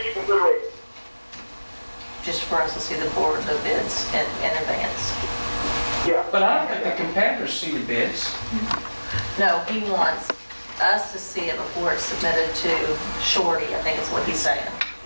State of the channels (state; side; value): inverted; both; correlation -1.00